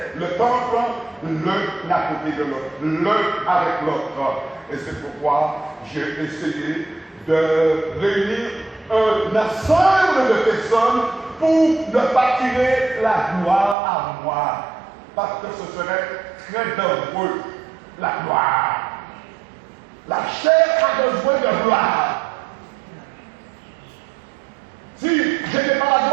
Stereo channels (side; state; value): left; drops out; at 13.8 s